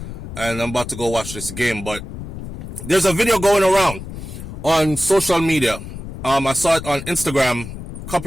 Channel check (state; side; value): noise; left; rumble, 10 dB below the sound